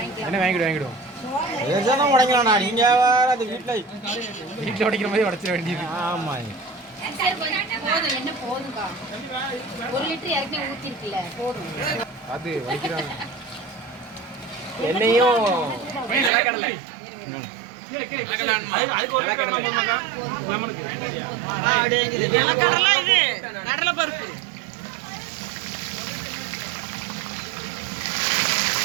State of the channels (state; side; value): drops out; left; at 16.3 s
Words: என்ன வாங்கிடுவோம். உடைக்கலாம்ண்ணா, நீங்கள் வேறு அது வீட்டில் உடைக்கிற மாதிரி உடைச்சிட வேண்டியது. ஆமாம், அது வலிக்கிறாங்க. என்னையும் கடலை பருப்பு